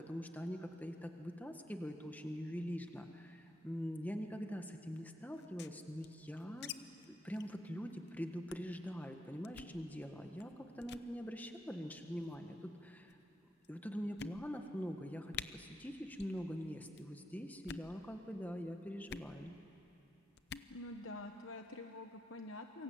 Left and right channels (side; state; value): both; normal; correlation 0.84